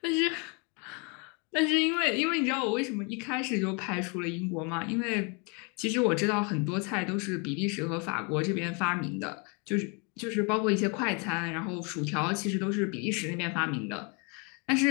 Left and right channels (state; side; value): quieter; right; 33.0 dB